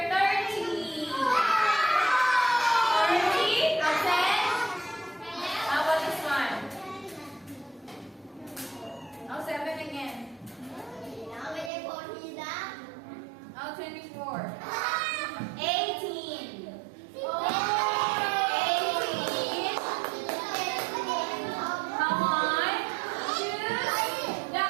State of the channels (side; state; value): left; drops out; at 11.7 s